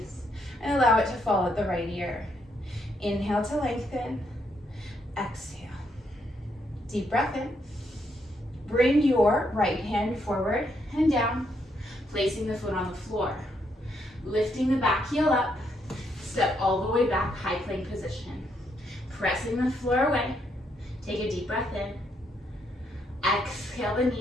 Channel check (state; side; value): normal; both; correlation 0.76